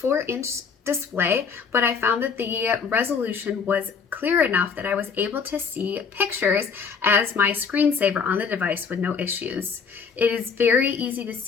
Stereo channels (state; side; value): quieter; right; 5.9 dB